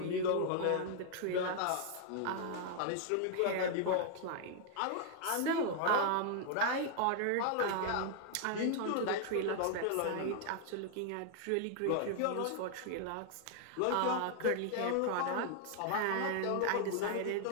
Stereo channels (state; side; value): different; both; correlation 0.00